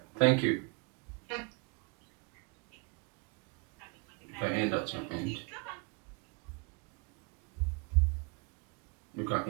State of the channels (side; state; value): left; quieter; 30.0 dB